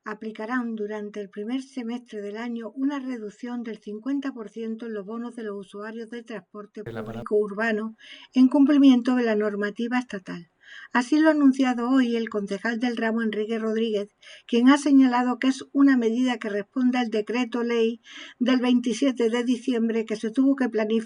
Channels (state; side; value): identical; both; correlation 1.00